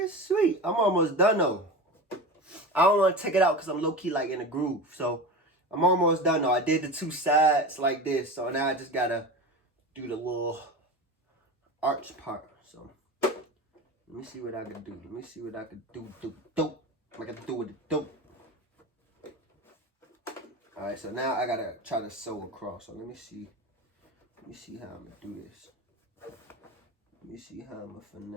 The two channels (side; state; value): both; normal; correlation 0.28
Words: sweet. I'm almost done though. I don't want to take it out because I'm low-key like in a groove. So I'm almost done though. I did the two sides like this. So now I just gotta do the little arch part. So let me see what I can do. Let me see what I can do. I gotta do with the dope. Alright, so now I gotta try to sew across. So let me see. Let me see how I'm gonna do this. Let me see how I'm gonna